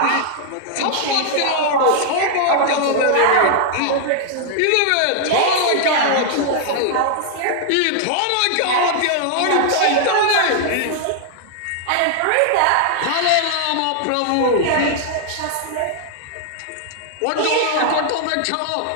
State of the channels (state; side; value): different; both; correlation 0.00